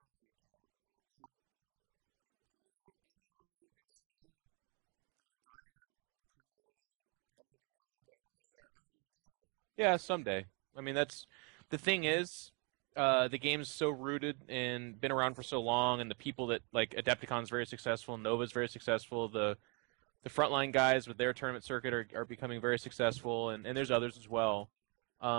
FAQ. Is there any way you can see the entire community coming together and be like, this is our FAQ? Yeah, someday. I mean, that's the thing is, the game's so rooted and been around for so long, and the people that, like, Adepticon's very successful, Nova's very successful, the frontline guys with their tournament circuit are becoming very successful, and there's others as well.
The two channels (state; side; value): quieter; left; 33.7 dB